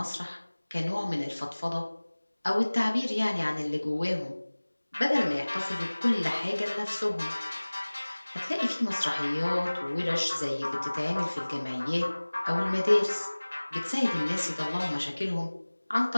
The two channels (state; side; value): inverted; both; correlation -1.00